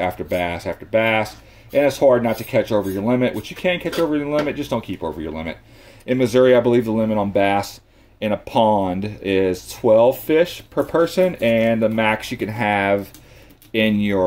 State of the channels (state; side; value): identical; both; correlation 1.00